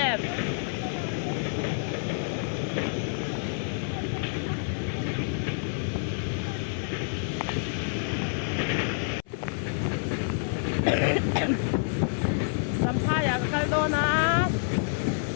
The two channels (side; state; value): right; silent; 56 dB below the other